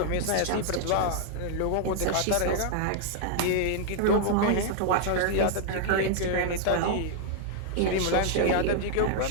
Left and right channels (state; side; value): different; both; correlation 0.00